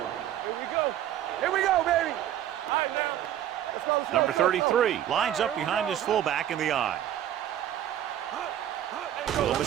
Here we go, baby. All right, now. Let's go. Number 33 lines up behind his fullback in the eye. Little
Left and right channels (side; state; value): left; quieter; 11.5 dB